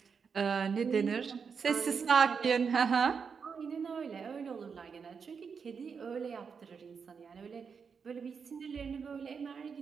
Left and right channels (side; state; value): left; quieter; 6.0 dB